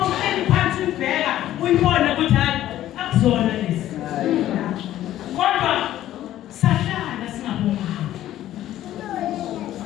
phansi ubheka uyibone ukuthi hayi akuzona lezi kodwa sahlala singabomama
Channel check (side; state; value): right; quieter; 13.2 dB